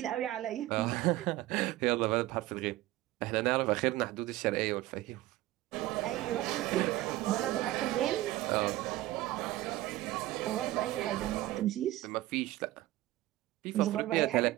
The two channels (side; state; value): left; quieter; 16.4 dB